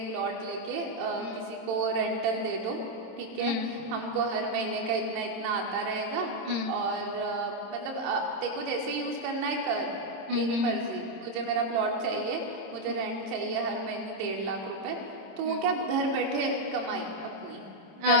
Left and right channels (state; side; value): late; left; 27 ms